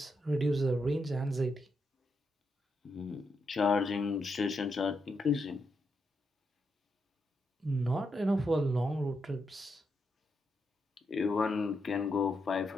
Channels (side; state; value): both; normal; correlation 0.82